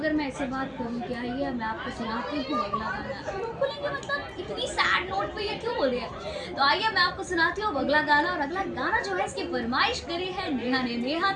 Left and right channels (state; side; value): identical; both; correlation 1.00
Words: मैं ऐसे बात करूँ क्या ये मैं आपको सुनाती हूँ अगला गाना, तो बोलेंगे मतलब इतनी सैड नोट पे ये क्यों बोल रही है। तो आइए मैं आपको सुनाती हूँ अगला गाना, और अगला गाना जो है इसकी फरमाइश करी है नेहा ने। नेहा,